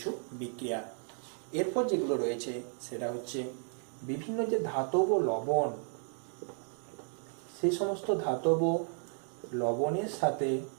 বিক্রিয়া। এরপর যেগুলো রয়েছে সেটা হচ্ছে বিভিন্ন যে ধাতব লবণ, সেই সমস্ত ধাতব লবণের সাথে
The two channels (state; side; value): silent; left; 55 dB below the other